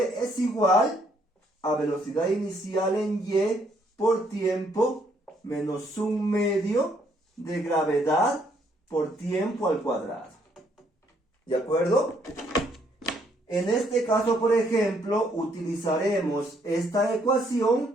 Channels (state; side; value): normal; both; correlation 0.69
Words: igual a velocidad inicial en Y por tiempo menos un medio de gravedad por tiempo al cuadrado. ¿De acuerdo? En este caso, por ejemplo, utilizaremos esta